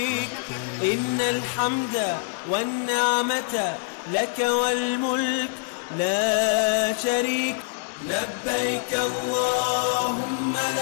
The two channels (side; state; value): right; silent; 62 dB below the other